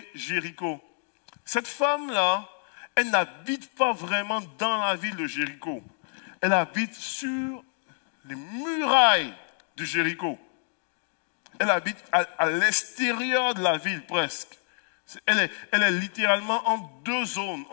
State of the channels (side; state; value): right; silent; digital silence